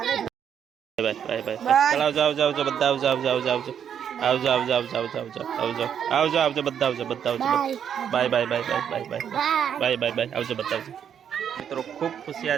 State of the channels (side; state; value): left; quieter; 8.5 dB